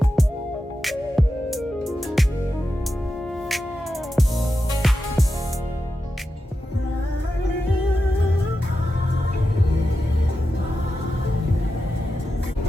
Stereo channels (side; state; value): both; normal; correlation 0.90